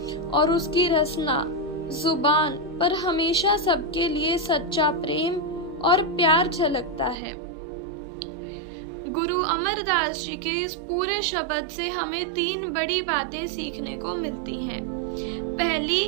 और उसकी रसना जुबान पर हमेशा सबके लिए सच्चा प्रेम और प्यार झलकता है। गुरु अमरदास जी के इस पूरे शब्द से हमें 3 बड़ी बातें सीखने को मिलती हैं। पहली,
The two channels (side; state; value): left; drops out; at 7.2 s